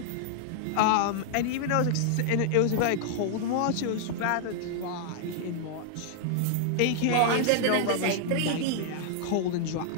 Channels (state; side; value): different; both; correlation 0.00